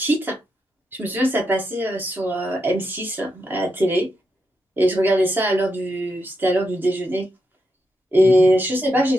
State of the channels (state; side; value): normal; both; correlation 0.84